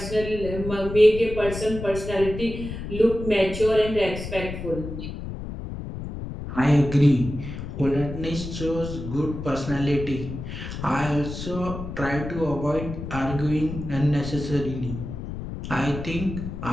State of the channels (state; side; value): noise; left; rumble, 8 dB below the sound